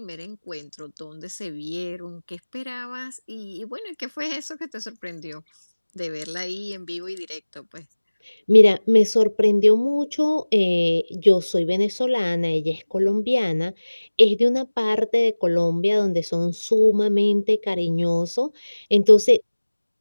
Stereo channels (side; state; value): both; inverted; correlation -1.00